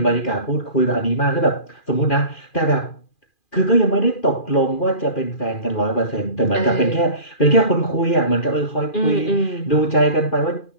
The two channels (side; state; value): right; late; 2.4 ms